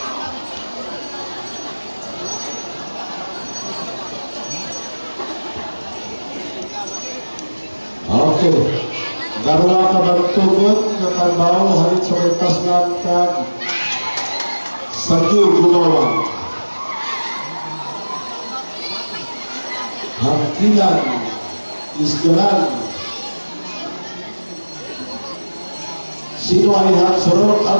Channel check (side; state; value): both; inverted; correlation -1.00